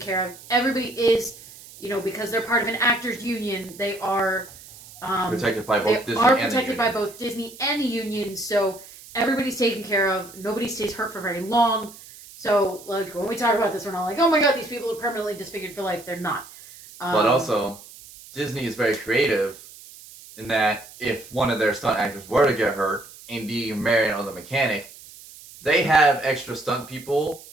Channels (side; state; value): right; noise; hiss, 19 dB below the sound